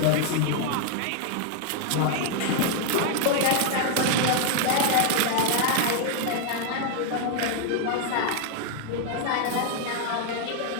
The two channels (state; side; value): different; both; correlation 0.00